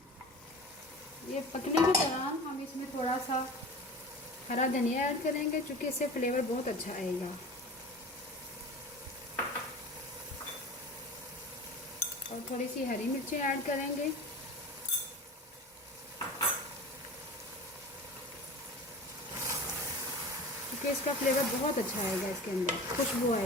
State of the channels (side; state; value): both; normal; correlation 0.36